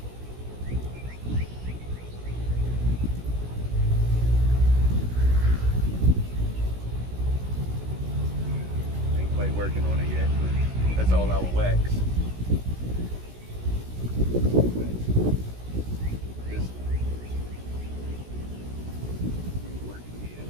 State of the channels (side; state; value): left; late; 16 ms